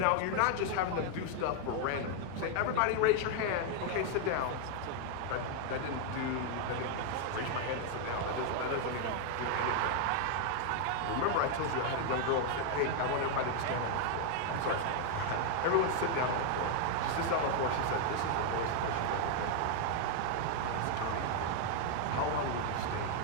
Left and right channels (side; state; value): both; different; correlation 0.00